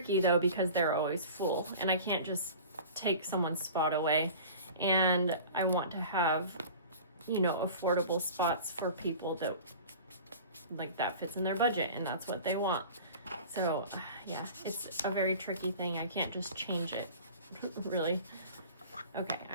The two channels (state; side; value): inverted; both; correlation -0.40